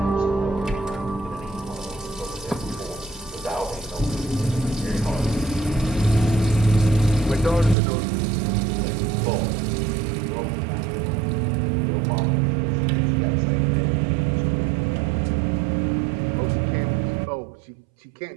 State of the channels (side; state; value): left; drops out; at 7.8 s